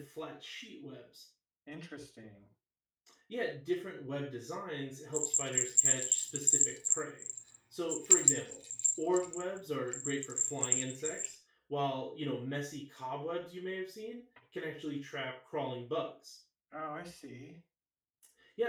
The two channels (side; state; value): both; identical; correlation 1.00